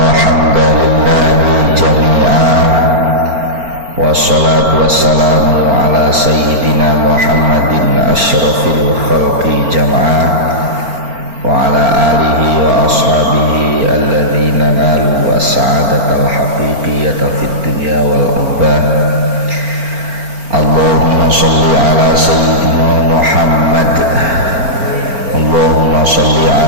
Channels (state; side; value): late; left; 4.4 ms